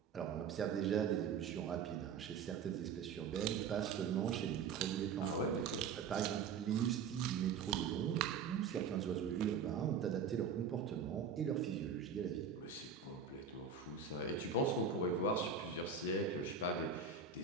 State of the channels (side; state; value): left; quieter; 6.1 dB